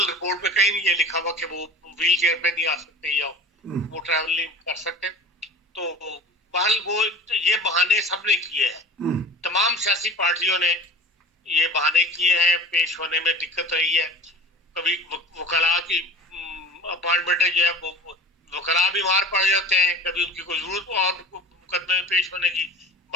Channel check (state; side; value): normal; both; correlation 0.38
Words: रिपोर्ट में कहीं नहीं ये लिखा हुआ कि वो व्हील चेयर पे नहीं आ सकते या वो ट्रैवल नहीं कर सकते। तो बहरहाल वो ये बहाने सबने किए हैं, तमाम सियासी पार्टियों ने ये बहाने किए हैं। पेश होने में दिक्कत रही है। कभी वकला की अपॉइंटमेंट जो है वो वकला बीमार पड़ जाते हैं, कभी उनकी कोई जरूरत और मुकदमे में पेश होने की